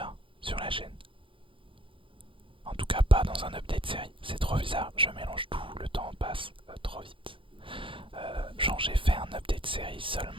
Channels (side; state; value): left; late; 0.25 ms